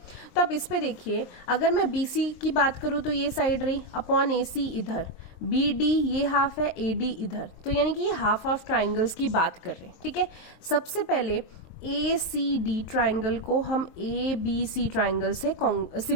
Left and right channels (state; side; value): late; right; 23 ms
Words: तो आप इस पे देखिए, अगर मैं BC की बात करूं तो ये साइड रही, अपॉन AC इधर, BD ये हाफ है, AD इधर, तो यानी कि ये हाफ हाफ ट्राइंगल्स की बात कर रहे हैं। ठीक है, सबसे पहले ACD ट्राइंगल को हम ABC ट्राइंगल से